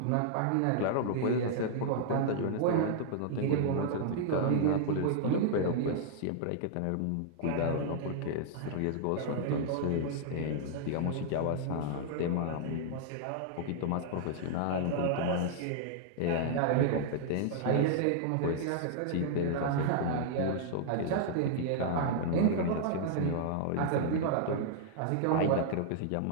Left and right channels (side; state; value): both; different; correlation -0.01